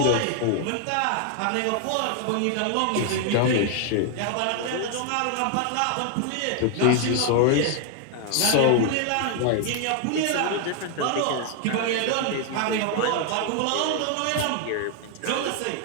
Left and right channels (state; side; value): different; both; correlation 0.00